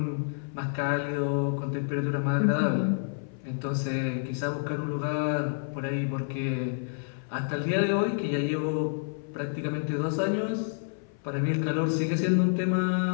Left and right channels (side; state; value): right; silent; 56 dB below the other